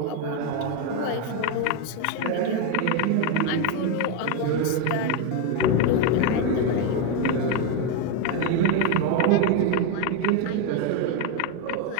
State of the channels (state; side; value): different; both; correlation 0.02